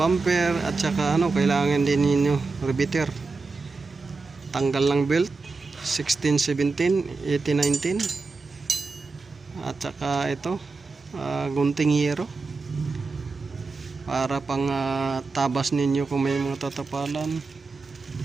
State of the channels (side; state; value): left; quieter; 4.0 dB